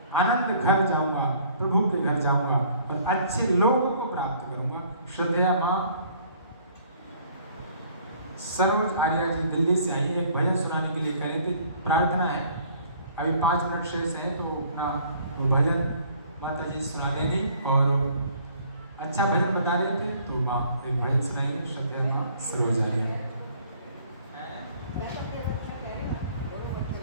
आनंद घर जाऊंगा, प्रभु के घर जाऊंगा और अच्छे लोगों को प्राप्त करूंगा। श्रद्धेया माँ सरोज आर्या जी दिल्ली से आई, एक भजन सुनाने के लिए कह रहे थे, प्रार्थना है। अभी 5 मिनट शेष है तो अपना वो भजन माता जी सुना देंगी और अच्छा भजन बता रहे थे तो माँ एक भजन सुनाएंगे। श्रद्धेया माँ सरोज आर्या।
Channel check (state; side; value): inverted; both; correlation -0.57